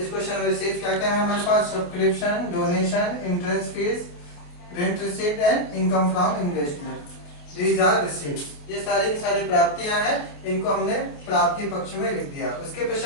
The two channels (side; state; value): right; late; 28 ms